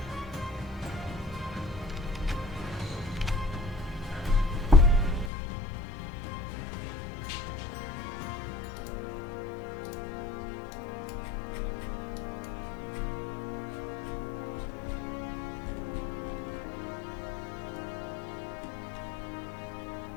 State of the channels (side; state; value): right; drops out; at 5.3 s